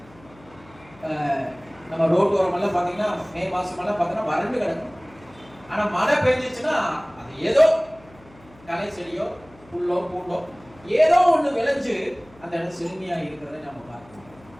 நம்ம ரோட்டோரம் எல்லாம் பாத்தீங்கன்னா மே மாசம் எல்லாம் பாத்தீங்கன்னா வறண்டு கிடக்கும். ஆனா மழை பெய்ஞ்சிச்சுன்னா அது ஏதோ களை செடியோ புல்லோ பூண்டோ ஏதோ ஒண்ணு விளைஞ்சு அந்த இடம் செழுமையா இருக்கிறத நம்ம பார்க்கணும்.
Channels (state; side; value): noise; left; hum, 25 dB below the sound